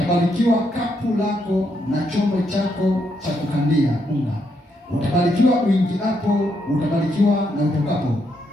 kapu lako na chombo chako cha kukandia unga. Utabarikiwa uingiapo, utabarikiwa na utokapo.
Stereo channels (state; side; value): normal; both; correlation 0.78